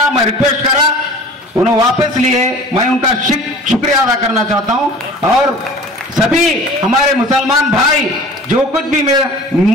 मैं रिक्वेस्ट करा, उन्होंने वापस लिए। मैं उनका शुक्रिया अदा करना चाहता हूँ। और सभी हमारे मुसलमान भाई जो कुछ भी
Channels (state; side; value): normal; both; correlation 0.43